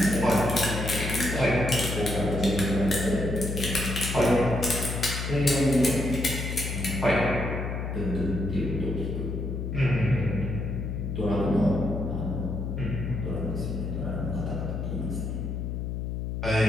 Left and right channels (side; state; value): left; noise; hum, 3 dB below the sound